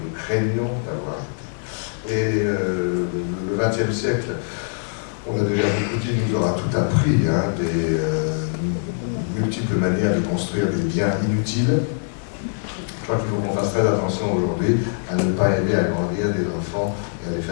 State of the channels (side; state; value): right; silent; digital silence